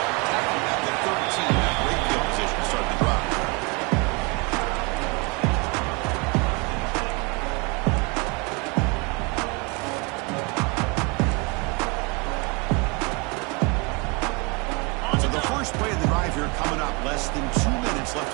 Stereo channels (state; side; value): quieter; left; 29.8 dB